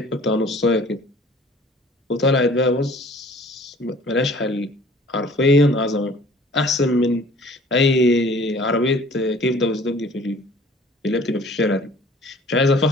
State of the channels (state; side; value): normal; both; correlation 0.51